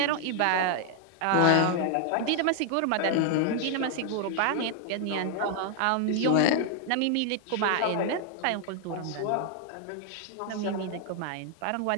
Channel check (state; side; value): different; both; correlation 0.00